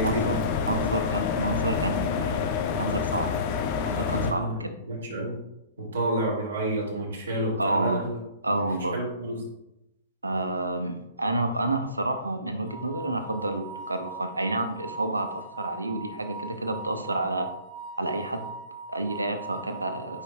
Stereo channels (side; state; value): both; inverted; correlation -0.48